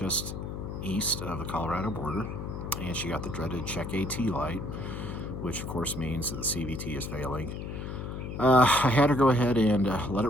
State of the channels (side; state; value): left; noise; hum, 6 dB below the sound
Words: east of the Colorado border. And she got the dreaded check AT light, which of course means that the CVT is failing. I had her go ahead and let it